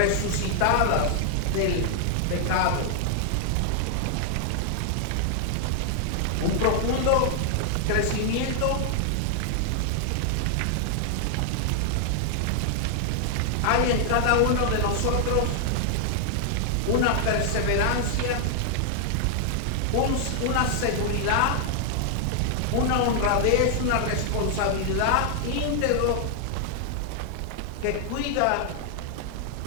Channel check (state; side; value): different; both; correlation 0.00